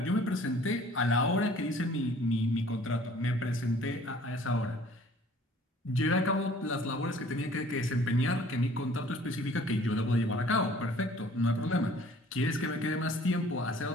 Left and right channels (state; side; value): normal; both; correlation 0.53